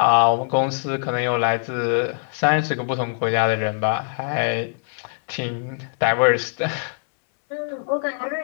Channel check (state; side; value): silent; right; 64 dB below the other